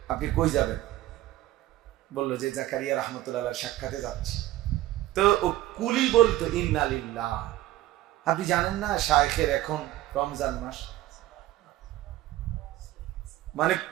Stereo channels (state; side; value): quieter; left; 15.2 dB